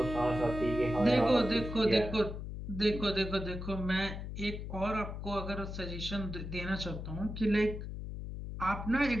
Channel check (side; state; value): left; noise; hum, 7 dB below the sound